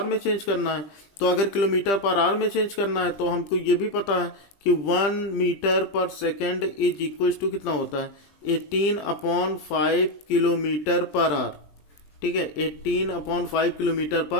में चेंज करना है। तो अगर किलोमीटर पर आवर में चेंज करना है तो हमको ये भी पता है कि 1 metre per second is equal to कितना होता है 18/5 किलोमीटर पर आवर। ठीक है, 18/5 किलोमीटर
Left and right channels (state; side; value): late; right; 20 ms